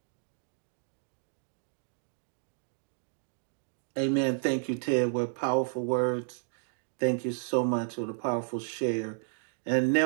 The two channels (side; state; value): left; silent; digital silence